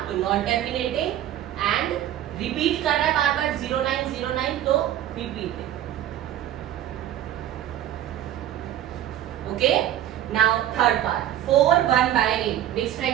तो नॉन टर्मिनेटिंग, एंड रिपीट कर रहा है बार बार 0909, तो repeating. Okay. Now third part 4 1/8. Mix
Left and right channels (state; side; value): quieter; left; 11.9 dB